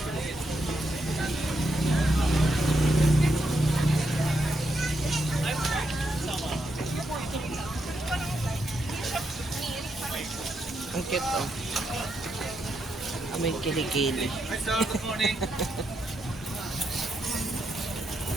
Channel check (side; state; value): both; normal; correlation 0.81